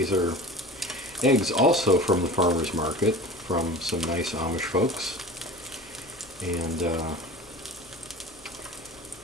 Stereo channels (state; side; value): noise; left; hum, 29 dB below the sound